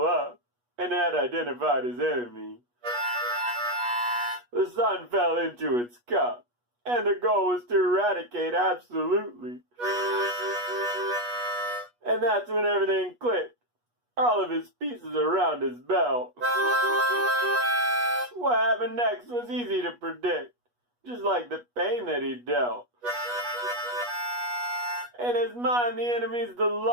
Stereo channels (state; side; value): late; left; 8.3 ms